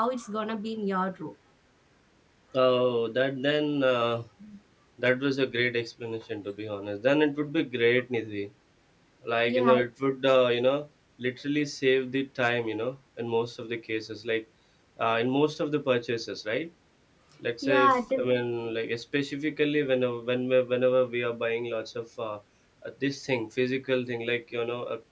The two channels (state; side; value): identical; both; correlation 1.00